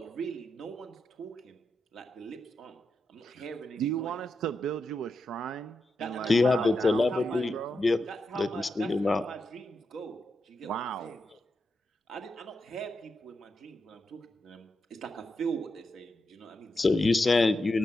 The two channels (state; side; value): normal; both; correlation 0.86